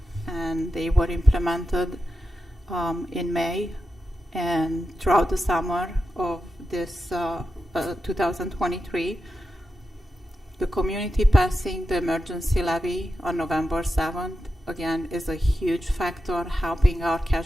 and they were implemented in May and throughout the summer of this 2023. The community passing the emergency levy on November 7th, again, is a huge factor helping our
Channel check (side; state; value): both; normal; correlation 0.89